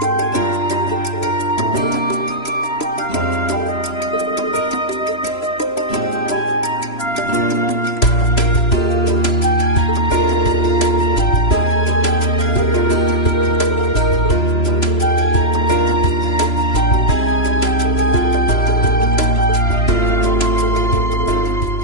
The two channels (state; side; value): late; right; 3.0 ms